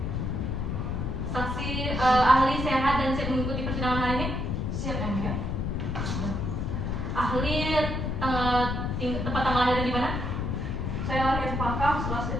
Saksi ahli sehat dan siap mengikuti persidangan hari ini? Siap yang mulia. Ahli tempat tanggal lahirnya di mana? Saya lahir di Pakam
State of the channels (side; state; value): left; noise; rumble, 1 dB below the sound